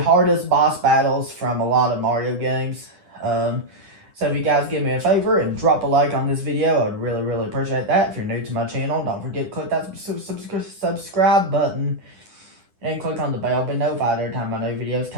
boss battles from a lot of Mario games. So if you guys give me a favor and drop a like on this video, I'd really appreciate that. If you're new to my channel, don't forget to click that subscribe button and click on the bell to be notified every time my new videos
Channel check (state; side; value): late; left; 9.9 ms